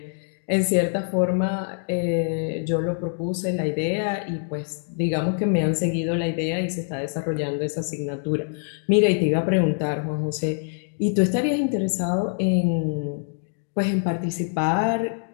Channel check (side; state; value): right; silent; digital silence